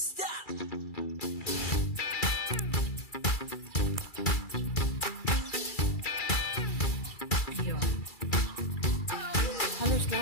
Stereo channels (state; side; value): late; right; 2.3 ms